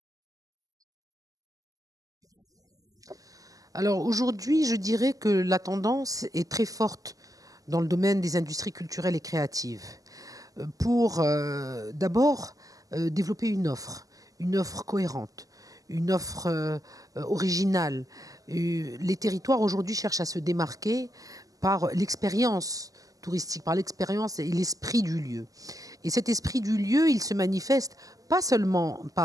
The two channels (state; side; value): late; left; 0.17 ms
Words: Alors aujourd'hui, je dirais que la tendance est très forte dans le domaine des industries culturelles et créatives. Pour d'abord développer une offre cohérente, une offre originale. Les territoires aujourd'hui cherchent à se démarquer par l'expérience touristique, par l'expérience et l'esprit du lieu. Et cet esprit du lieu, il se manifeste pas seulement